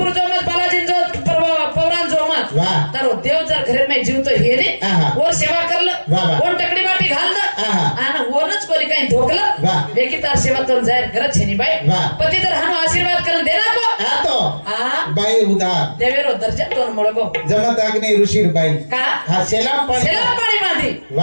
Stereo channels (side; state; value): both; inverted; correlation -1.00